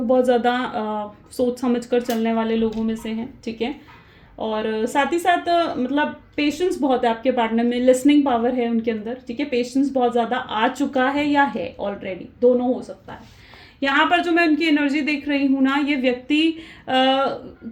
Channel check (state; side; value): identical; both; correlation 1.00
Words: ज़्यादा सोच समझ कर चलने वाले लोगों में से हैं, ठीक है। और साथ ही साथ मतलब पेशेंस बहुत है आपके पार्टनर में, लिसनिंग पावर है उनके अंदर, ठीक है। पेशेंस बहुत ज़्यादा आ चुका है या है ऑलरेडी, दोनों हो सकता है। यहाँ पर जो मैं उनकी एनर्जी देख रही हूँ ना, ये व्यक्ति